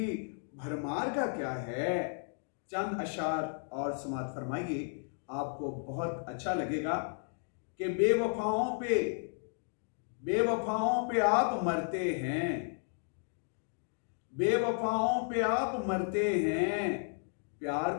भरमार का क्या है। चंद अशार और समात फरमाइए, आपको बहुत अच्छा लगेगा कि बेवफाओं पे आप मरते हैं, बेवफाओं पे आप मरते हैं, प्यार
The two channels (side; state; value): right; silent; 55 dB below the other